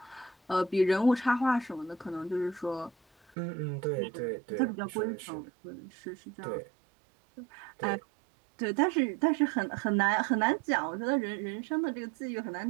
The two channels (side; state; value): left; drops out; at 3.3 s